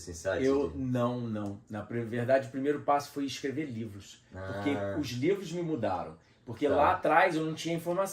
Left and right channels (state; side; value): identical; both; correlation 1.00